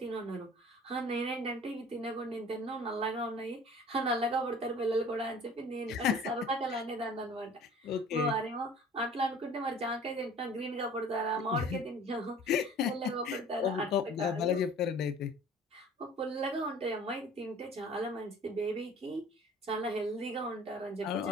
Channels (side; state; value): both; normal; correlation 0.47